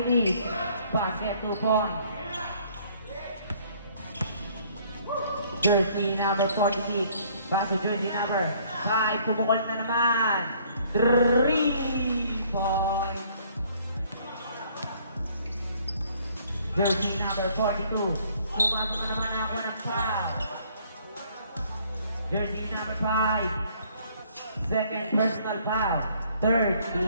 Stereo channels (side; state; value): both; inverted; correlation -0.60